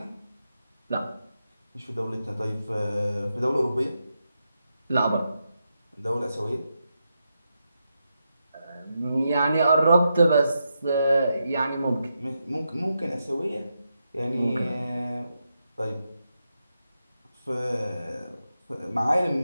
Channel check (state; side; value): inverted; both; correlation -0.86